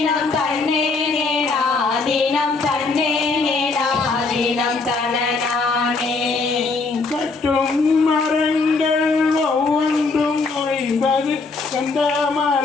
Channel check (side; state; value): right; quieter; 4.0 dB